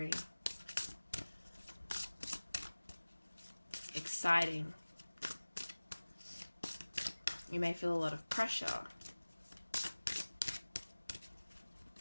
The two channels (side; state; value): both; inverted; correlation -1.00